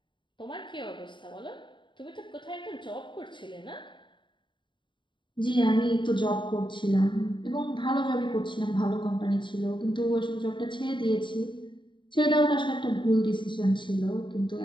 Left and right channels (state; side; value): late; right; 0.23 ms